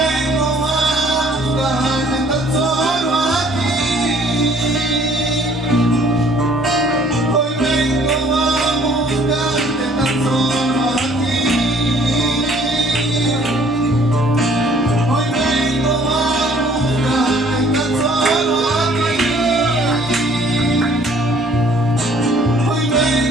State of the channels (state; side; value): normal; both; correlation 0.58